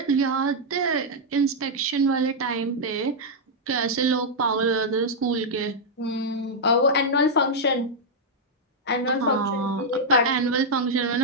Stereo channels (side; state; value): both; normal; correlation -0.04